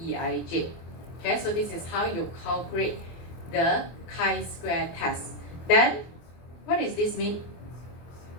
Okay, so this is how you calculate the chi-square test. Then, what does this mean?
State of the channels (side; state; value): right; late; 24 ms